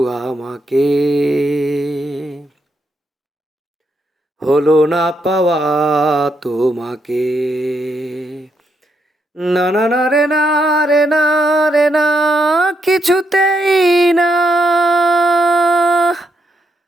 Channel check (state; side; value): normal; both; correlation 0.78